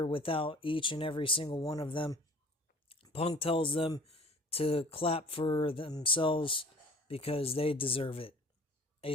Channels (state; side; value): normal; both; correlation 0.49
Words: without each and every single one of them. Punk tells them to clap for themselves because they deserve it. A